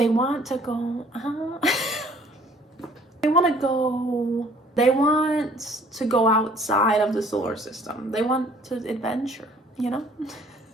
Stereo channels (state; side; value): normal; both; correlation 0.56